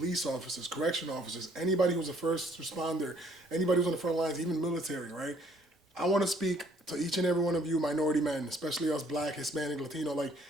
officers, correction officers, anybody who's a first responder, anybody who's on the front lines, even military, right? I want to speak to each and every one of you minority men, especially us Black, Hispanic, Latino.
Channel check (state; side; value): normal; both; correlation 0.62